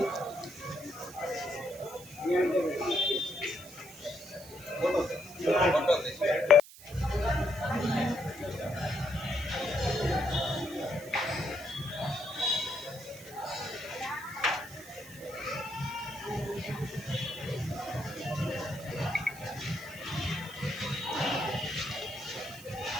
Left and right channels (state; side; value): noise; right; hiss, 17 dB below the sound